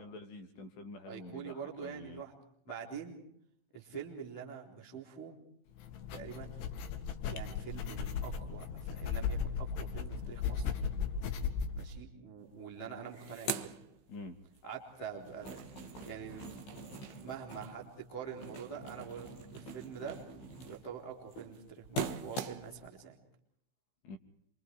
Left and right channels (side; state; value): right; late; 15 ms